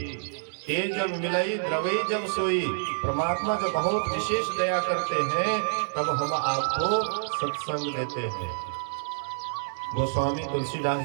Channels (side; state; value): left; silent; digital silence